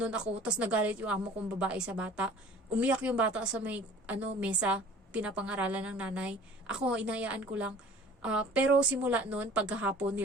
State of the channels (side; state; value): both; normal; correlation 0.48